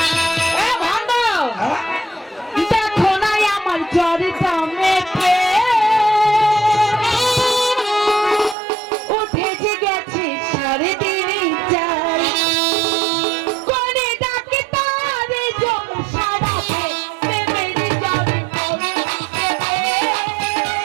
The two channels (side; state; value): left; drops out; at 8.6 s